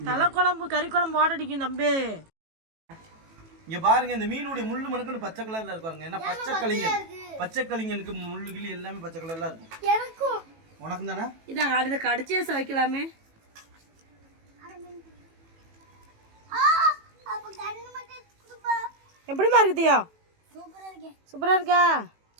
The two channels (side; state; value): left; late; 18 ms